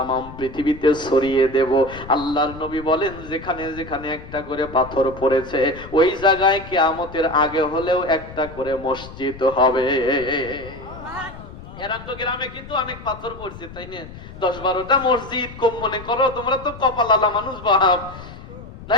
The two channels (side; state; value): left; noise; rumble, 15 dB below the sound